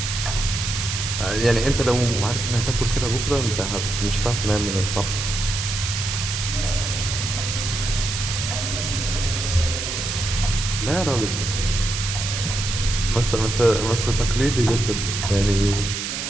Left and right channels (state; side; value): noise; right; hiss, 4 dB below the sound